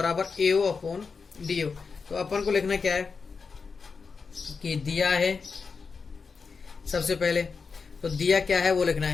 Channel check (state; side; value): quieter; right; 5.1 dB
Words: एओ अपॉन डीओ। तो अपन को लिखना क्या है कि दिया है, सबसे पहले तो दिया क्या है वो लिखना